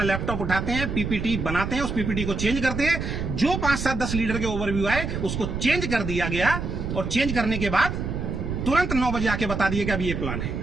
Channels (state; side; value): noise; right; rumble, 4 dB below the sound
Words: लैपटॉप उठाते हैं, पीपीटी बनाते हैं, उस पीपीटी को चेंज करते हैं। जो 5, 7, 10 लीडर के ओवरव्यू आए उसको चेंज कर दिया गया और चेंज करने के बाद तुरंत 9 बजे आके बता दिए कि अब ये प्लान है।